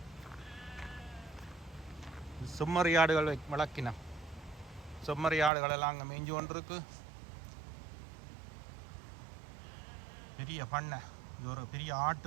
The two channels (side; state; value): left; drops out; at 5.5 s